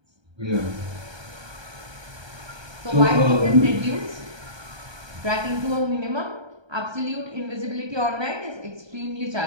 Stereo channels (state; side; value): late; left; 1.3 ms